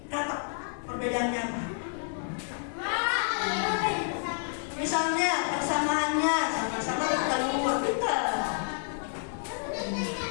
katak. Perbedaannya apa? Misalnya persamaannya sama-sama bertelur, betul.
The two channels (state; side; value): silent; right; 58 dB below the other